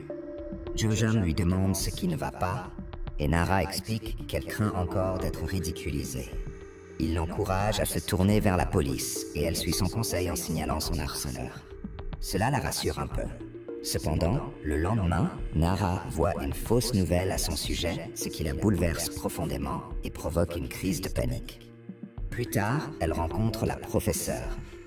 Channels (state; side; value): identical; both; correlation 1.00